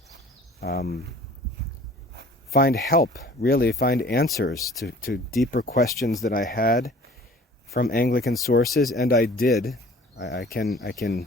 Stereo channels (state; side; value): normal; both; correlation 0.49